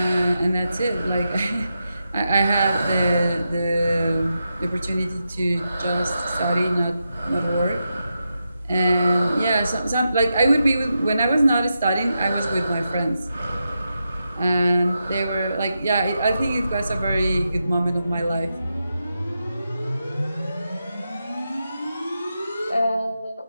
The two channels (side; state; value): both; inverted; correlation -0.88